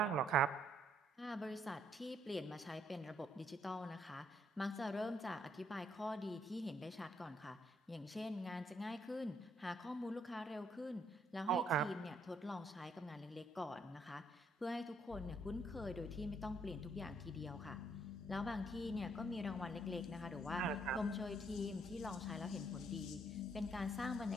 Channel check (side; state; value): both; normal; correlation 0.69